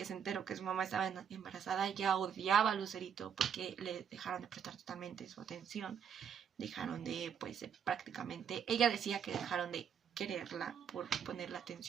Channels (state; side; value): quieter; left; 7.8 dB